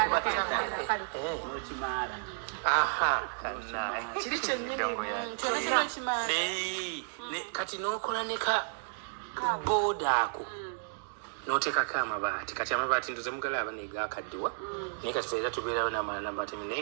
kati n'okola ne ka booda ako n'oteekako amabaati. Kati amabaati ntuze mugalaba negakaddiwa naye kati feera tubeerawo n'amabaati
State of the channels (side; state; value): left; silent; digital silence